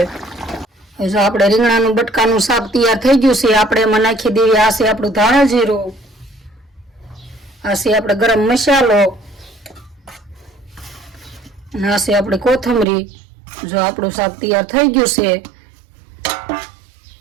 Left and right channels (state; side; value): drops out; left; at 12.9 s